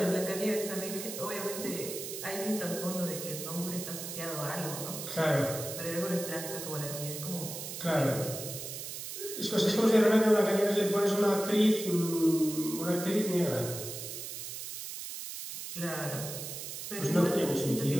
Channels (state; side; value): noise; right; hiss, 8 dB below the sound